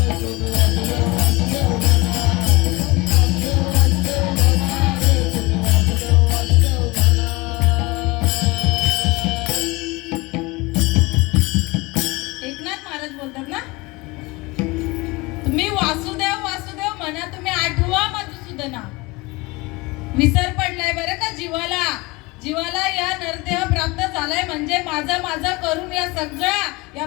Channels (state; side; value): quieter; right; 23.4 dB